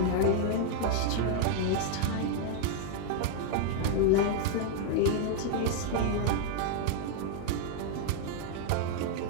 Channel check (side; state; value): both; different; correlation 0.00